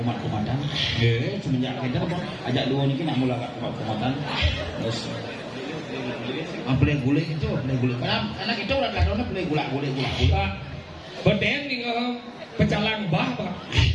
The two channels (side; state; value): both; identical; correlation 1.00